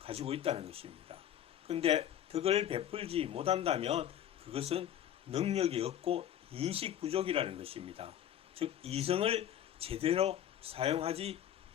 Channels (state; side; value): quieter; right; 10.8 dB